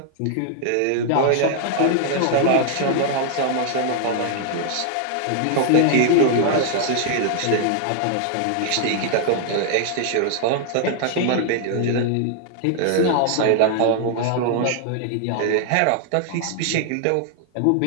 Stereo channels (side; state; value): both; different; correlation 0.00